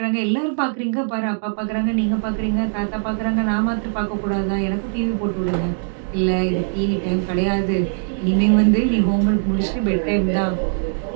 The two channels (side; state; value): left; silent; 62 dB below the other